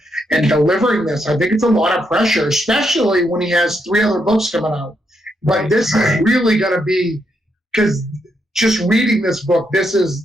and delivering this. I think it's a lot of pressure, especially when he has 3 other books coming out. But this is really going to be, because just reading this book, this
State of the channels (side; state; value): both; normal; correlation 0.79